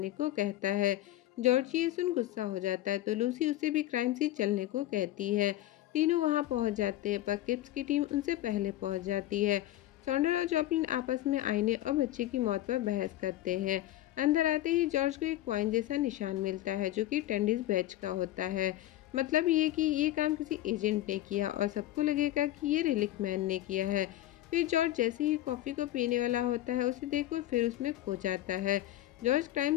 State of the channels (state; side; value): quieter; right; 14.4 dB